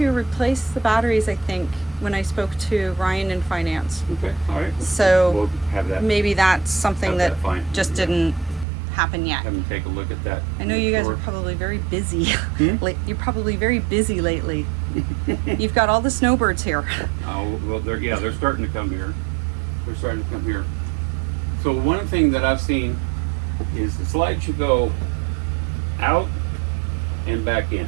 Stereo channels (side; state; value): left; drops out; at 8.7 s